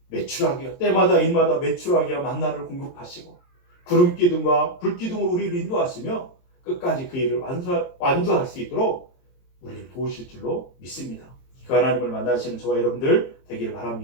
매출하게 때마다 일마다 매출하게 만나를 공급하시고 구름 기둥과 불 기둥으로 우리를 인도하시며 끝까지 그 일을 완주할 수 있도록 우리를 도우실 줄로 믿습니다. 그 하나님을 만나시는 저와 여러분들 되기를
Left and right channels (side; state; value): right; late; 23 ms